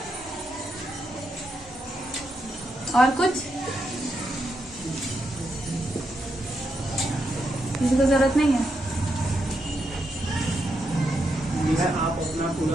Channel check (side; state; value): both; normal; correlation 0.82